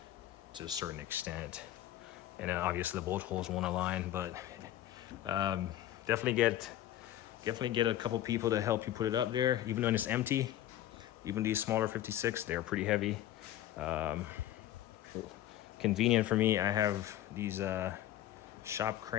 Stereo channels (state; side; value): quieter; right; 13.1 dB